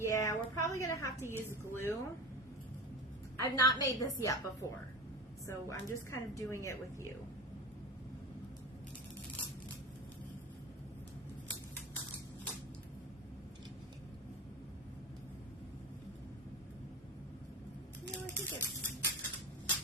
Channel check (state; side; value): normal; both; correlation 0.28